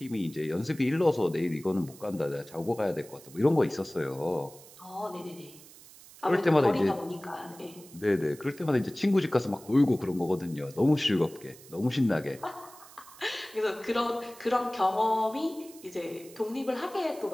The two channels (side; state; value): right; noise; hiss, 20 dB below the sound